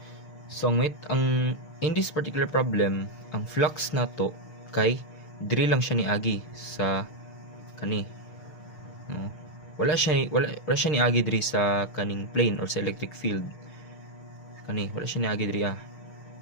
So in this particular problem, ang flux nato kay diri lang siya niagi sa kani, no? Wala siya niagi diri sa kaning plane or sa electric field. Kani wala siya niagi diri,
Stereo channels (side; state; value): right; late; 6.6 ms